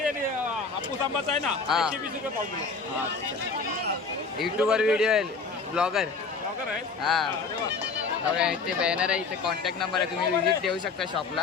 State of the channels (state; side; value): quieter; right; 4.7 dB